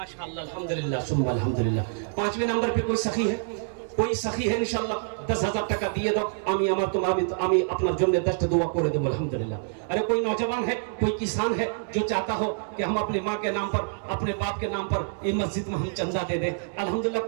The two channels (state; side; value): silent; left; digital silence